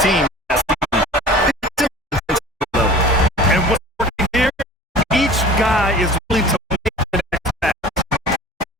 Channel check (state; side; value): normal; both; correlation 0.42